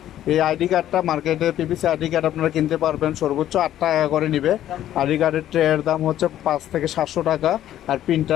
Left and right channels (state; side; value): quieter; right; 12.1 dB